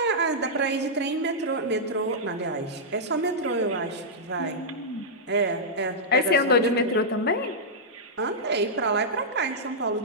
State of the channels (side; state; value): both; normal; correlation -0.10